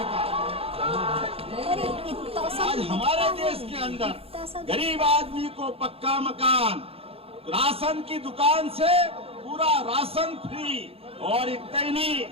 है। आज हमारे देश के अंदर गरीब आदमी को पक्का मकान, राशन की दुकान से पूरा राशन फ्री, और इतना ही नहीं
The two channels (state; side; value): late; left; 0.28 ms